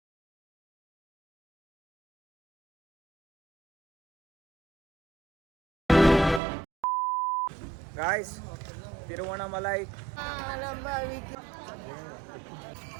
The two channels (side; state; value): left; drops out; at 6.4 s